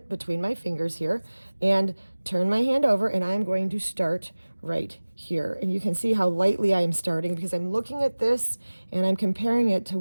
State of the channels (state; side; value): inverted; both; correlation -1.00